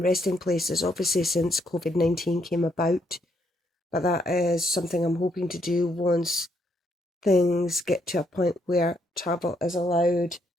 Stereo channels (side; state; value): both; normal; correlation 0.74